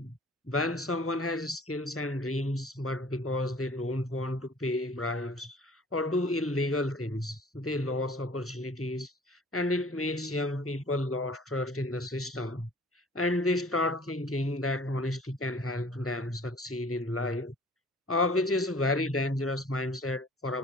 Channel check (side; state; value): both; normal; correlation 0.50